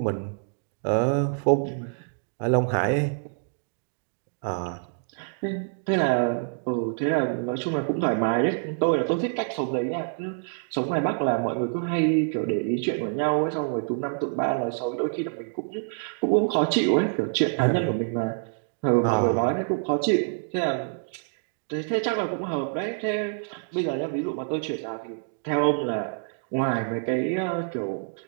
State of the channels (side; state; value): left; silent; digital silence